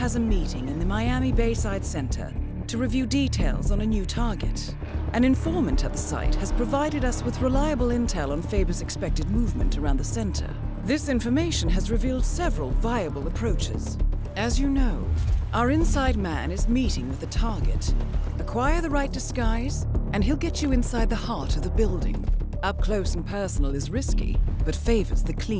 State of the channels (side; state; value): both; identical; correlation 1.00